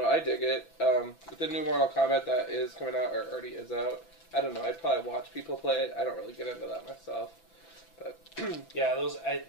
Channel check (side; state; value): right; late; 6.0 ms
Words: I dig it. The new Mortal Kombat that is coming out, or already is out, I don't know. I'd probably watch people play it. I don't really get into that myself. But yeah,